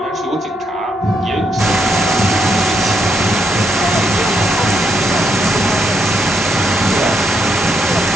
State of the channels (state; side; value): normal; both; correlation 0.78